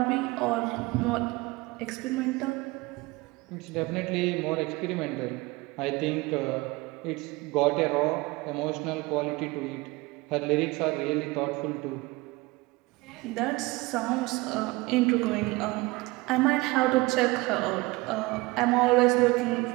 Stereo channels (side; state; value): left; quieter; 22.6 dB